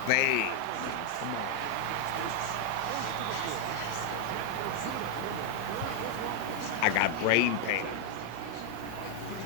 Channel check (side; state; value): both; different; correlation 0.00